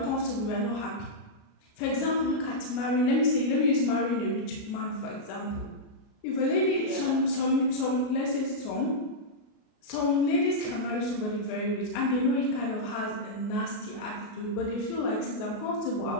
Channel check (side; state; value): right; late; 28 ms